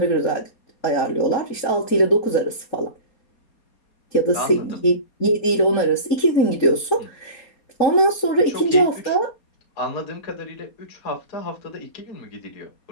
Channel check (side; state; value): right; late; 4.2 ms